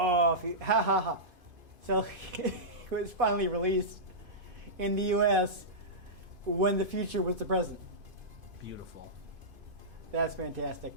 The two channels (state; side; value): late; left; 2.5 ms